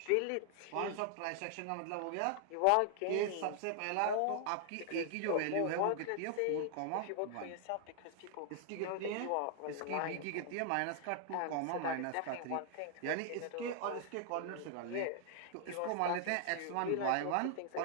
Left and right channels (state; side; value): different; both; correlation 0.00